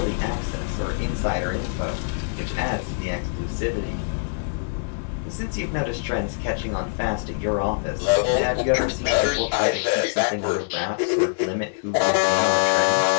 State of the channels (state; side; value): silent; right; digital silence